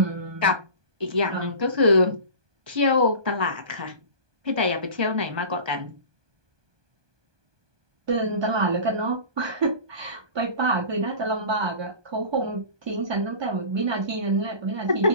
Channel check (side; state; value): left; late; 1.2 ms